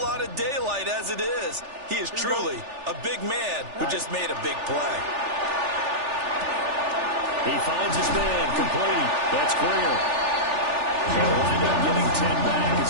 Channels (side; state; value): left; late; 3.4 ms